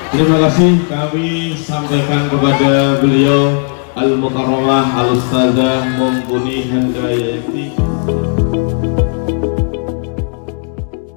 Terima kasih kami sampaikan kepada beliau Al-Mukarramah Al-Ustazah Mumpuni Handayati.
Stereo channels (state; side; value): silent; right; 56 dB below the other